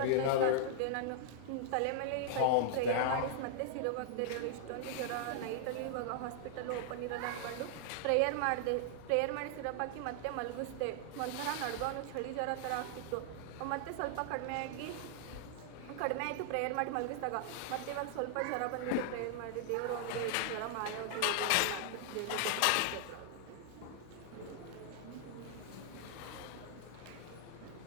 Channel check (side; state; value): both; different; correlation -0.01